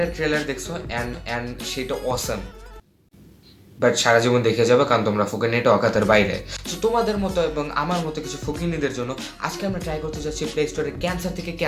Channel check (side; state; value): both; identical; correlation 1.00